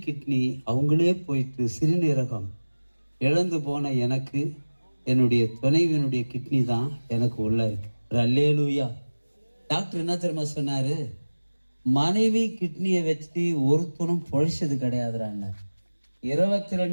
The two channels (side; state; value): both; inverted; correlation -1.00